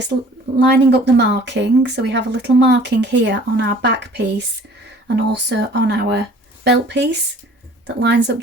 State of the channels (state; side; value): normal; both; correlation 0.51